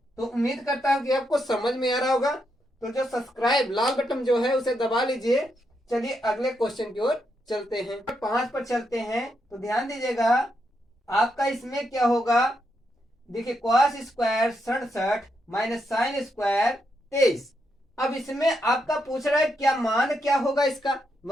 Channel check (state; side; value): normal; both; correlation 0.81